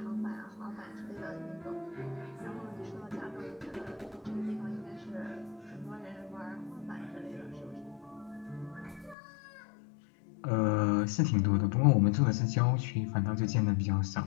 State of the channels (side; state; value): right; drops out; at 9.2 s